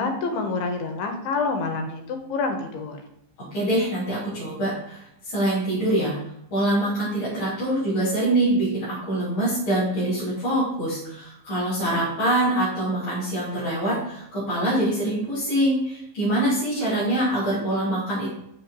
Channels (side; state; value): right; late; 15 ms